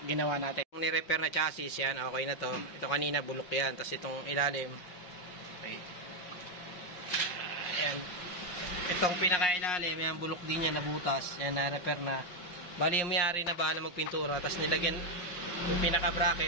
ginawa natin. Yung ni-repair na chassis yan, okay na to. Ito kanina bulok yan. Tapos itong ilalim. Okay. Ayan. Itong pinaka-ilalim, yan bulok din yan, nabutas. Yan, na-repair na. Bali yung may-ari na bahala magpintura. Tapos nilagyan yung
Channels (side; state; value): right; late; 5.6 ms